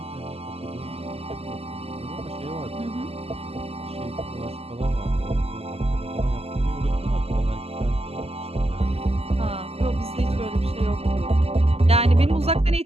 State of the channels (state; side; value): late; left; 0.29 ms